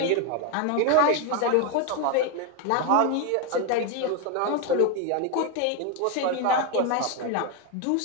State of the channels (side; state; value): both; different; correlation 0.01